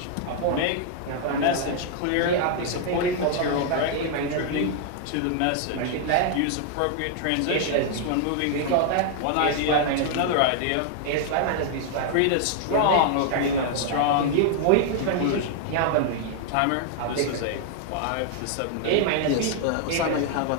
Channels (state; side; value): different; both; correlation 0.00